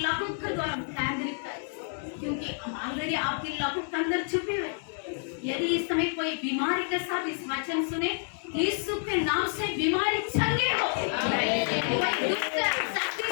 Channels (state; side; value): silent; right; 59 dB below the other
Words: लहू के द्वारा केंद्रित कर, क्योंकि हम ऑलरेडी आपके लहू के अंदर छुपे हुए। यदि इस समय कोई बीमारी के साथ इस वचन सुने, यीशु के नाम से बीमारी चंगे हो। कोई दुष्ट शक्ति